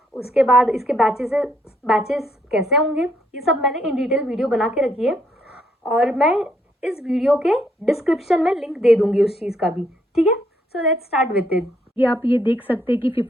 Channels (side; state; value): both; normal; correlation 0.72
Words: उसके बाद इसके बैचेस कैसे होंगे। ये सब मैंने इन डिटेल वीडियो बना के रखी है और मैं इस वीडियो के डिस्क्रिप्शन में लिंक दे दूंगी उस चीज़ का भी। ठीक है, so let's start with it. ये आप ये देख सकते हैं कि